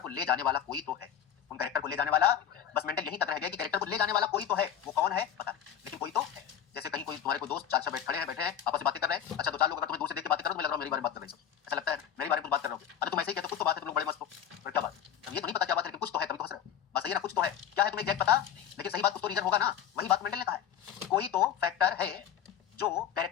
ले जाने वाला कोई तो है। उन कैरेक्टर को ले जाने वाला, बस मेंडल यही तक रह गया कि कैरेक्टर को ले जाने वाला कोई तो है। वो कौन है पता नहीं, लेकिन कोई तो है। जैसे कहीं कोई तुम्हारे को दोस्त चार बैठे हैं आपस में बातें कर रहे हैं, अच्छा दो चार लोग अगर तुम्हें दूर से देख के बातें कर रहे हो तो लग रहा है मेरी बारे में बात कर रहे हैं, ऐसा लगता है मेरी बारे में कुछ बात कर रहे हो। अरे तुम ऐसे ही कहते हो कुछ तो बात है, तुम लोग बड़े मस्त हो, पर क्या बात? अब ये तो नहीं पता क्या बात है, लेकिन कुछ तो है, तभी तो हंस रहे हो। बस सही है ना, कुछ तो है। क्या है तुम्हें एग्जैक्ट पता, लेकिन सही बात कुछ तो रीजन होगा ना। वही बात मेंडल ने कहा है, कोई तो फैक्टर है जो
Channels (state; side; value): quieter; right; 9.3 dB